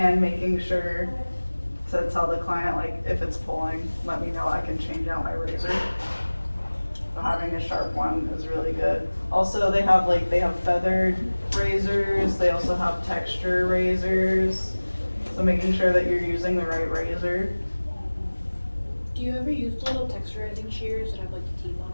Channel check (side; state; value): both; inverted; correlation -1.00